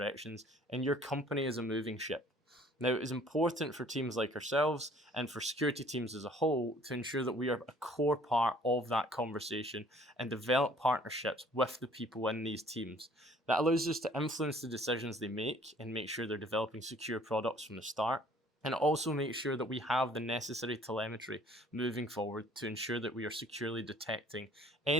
and your company is a moving ship. Now, it is important for teams like ourselves and for security teams as a whole to ensure that we are a core part of that conversation and develop partnerships with the people in these teams. That allows us to influence the decisions they make and make sure they're developing secure products from the start. And also make sure that we have the necessary telemetry moving forward to ensure that we are securely detecting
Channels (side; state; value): both; normal; correlation 0.56